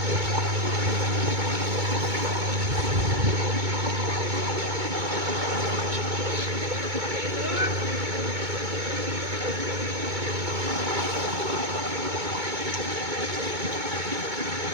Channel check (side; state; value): left; late; 2.2 ms